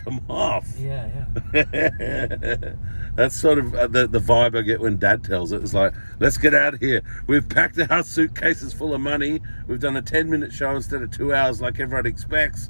them off. Yeah. That's sort of the vibe I get when Dad tells it. It's like, let's get out of here. We've packed our suitcases full of money. We've done a 10-minute show instead of 2 hours like everyone expects.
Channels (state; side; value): inverted; both; correlation -1.00